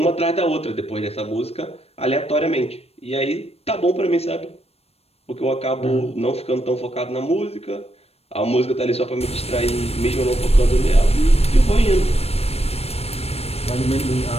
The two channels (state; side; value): late; right; 0.29 ms